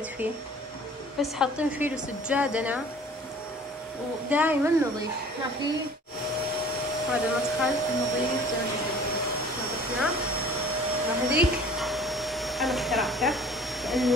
فيه، بس حاطين فيه سجادنا ودائما نظيف، ما في. هذا المدخل نظيف زي ما شفتوا، نظفناه. وهذيك أنا اخترعته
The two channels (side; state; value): both; normal; correlation 0.48